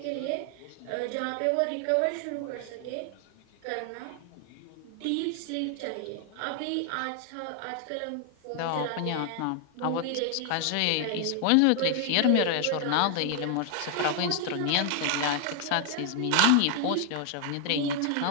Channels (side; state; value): both; different; correlation 0.00